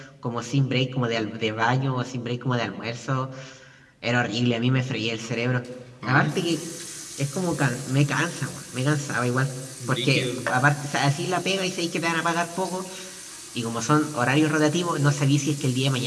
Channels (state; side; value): identical; both; correlation 1.00